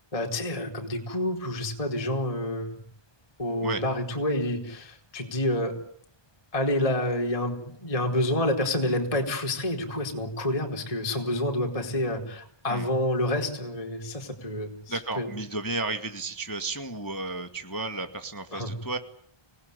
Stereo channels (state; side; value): late; right; 1.6 ms